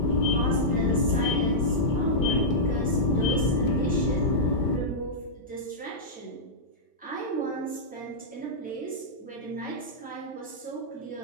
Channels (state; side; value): normal; both; correlation -0.12